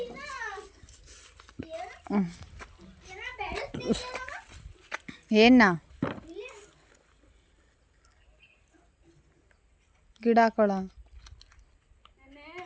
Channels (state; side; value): identical; both; correlation 1.00